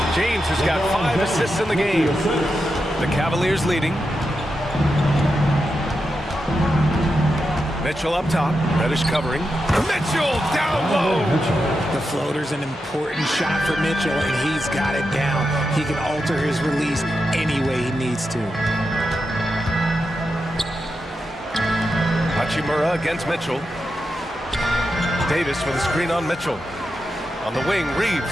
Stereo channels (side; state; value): both; normal; correlation 0.88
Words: James has got 5 assists in the game. The Cavaliers leading. Mitchell up top. Reddish covering. Mitchell down low. The floater's an important shot for Mitchell, and he's got it down. He can alter his release any way he needs to. Hachimura against Mitchell. Davis with a screen on Mitchell. On the wing,